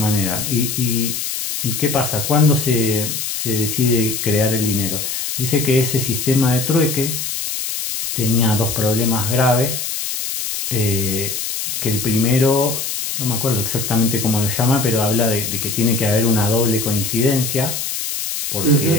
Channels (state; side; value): noise; left; hiss, 4 dB below the sound